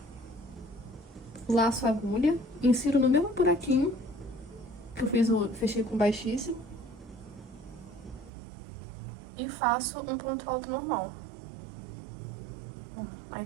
Laço a agulha. Insiro no mesmo buraquinho que eu fechei com baixíssimo. E faço um ponto alto normal. Aí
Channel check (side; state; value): left; drops out; at 8.3 s